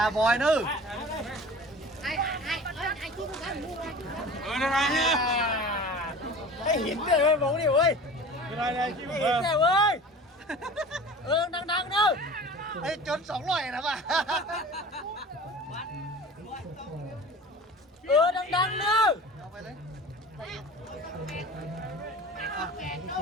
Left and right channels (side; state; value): both; normal; correlation 0.39